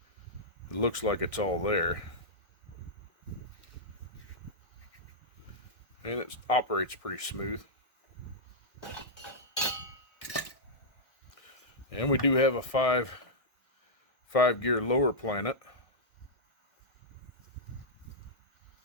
it looks like it's all there. And it operates pretty smooth. And we do have a five gear lower planet.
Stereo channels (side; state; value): right; late; 1.6 ms